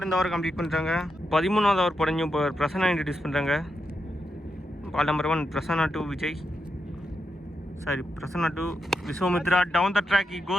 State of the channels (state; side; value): normal; both; correlation 0.86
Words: இந்த ஓவர் கம்ப்ளீட் பண்ணுறாங்க. 13வது ஓவர் போட நியூ பிரசன்னா இன்ட்ரடியூஸ் பண்ணுறாங்க. Ball number 1 Prasanna to Vijay, sorry Prasanna to Vishwamitra. Down the track he